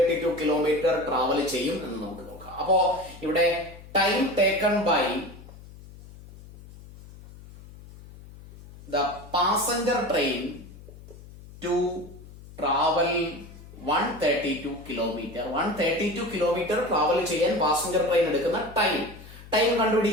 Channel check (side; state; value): left; noise; hum, 18 dB below the sound